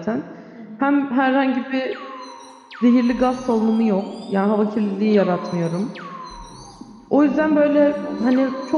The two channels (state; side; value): identical; both; correlation 1.00